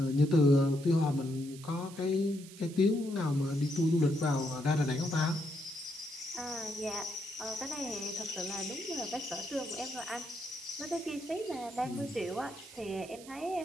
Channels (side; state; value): right; noise; hiss, 18 dB below the sound